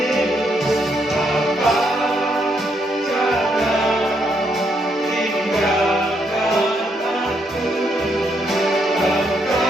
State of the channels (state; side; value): normal; both; correlation 0.76